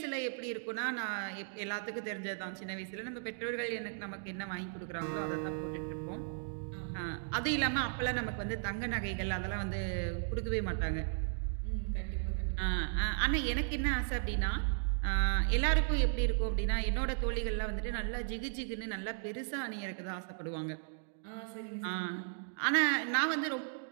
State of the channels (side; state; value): left; silent; digital silence